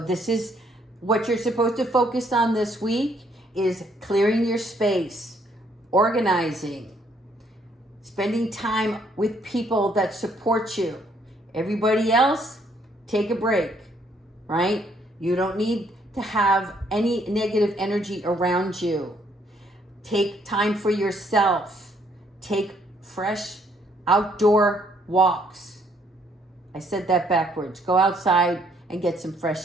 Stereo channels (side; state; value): both; normal; correlation 0.67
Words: is what you're supposed to focus on this week is clearing your space, organizing, spending time with people that support you. Everybody else, take a break, right? You don't need to have any negative energy around you. Take time for yourself. Take fresh outdoor walks. I said that backwards. Go outside and get some